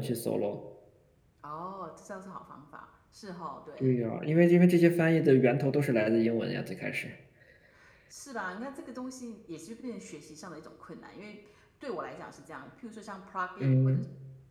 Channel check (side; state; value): both; identical; correlation 1.00